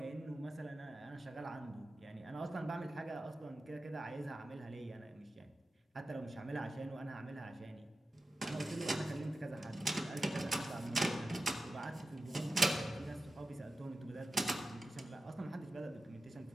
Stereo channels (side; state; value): both; normal; correlation 0.92